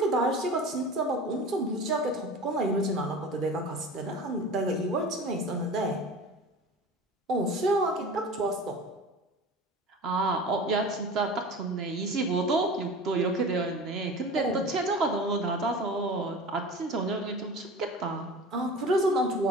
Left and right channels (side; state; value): both; normal; correlation 0.36